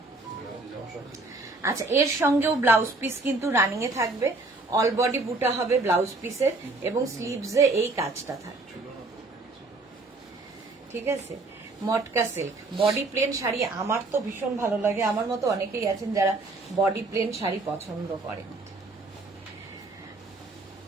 আচ্ছা, এর সঙ্গেও ব্লাউজ পিস কিন্তু রানিং এ থাকবে, অল বডি বুটা হবে ব্লাউজ পিসের এবং স্লিভসে এই কাজটা থাকবে, ঠিক আছে। মটকা সিল্ক, বডি প্লেন শাড়ি আমার তো ভীষণ ভালো লাগে, আমার মতো অনেকেই আছেন যারা বডি প্লেন শাড়ি পছন্দ করেন।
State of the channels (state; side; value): quieter; left; 3.2 dB